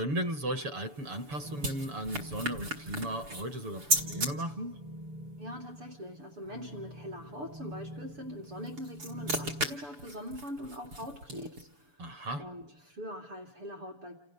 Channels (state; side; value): late; left; 6.9 ms